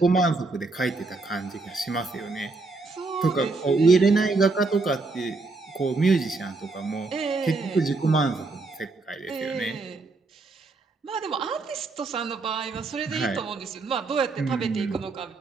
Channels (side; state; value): left; quieter; 3.6 dB